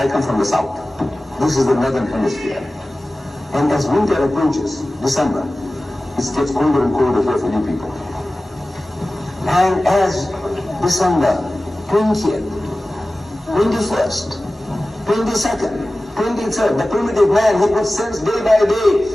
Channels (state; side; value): normal; both; correlation 0.96